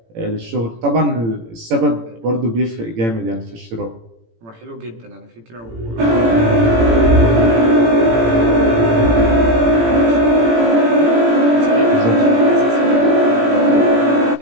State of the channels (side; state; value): left; late; 18 ms